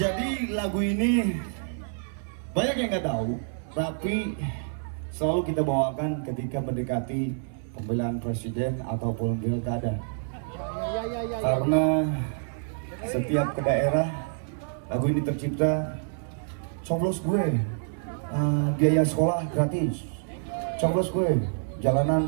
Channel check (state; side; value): silent; left; 60 dB below the other